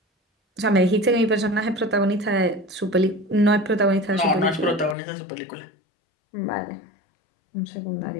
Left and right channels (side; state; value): right; drops out; at 5.0 s